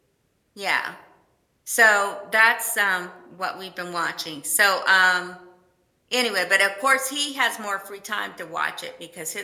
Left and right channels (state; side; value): identical; both; correlation 1.00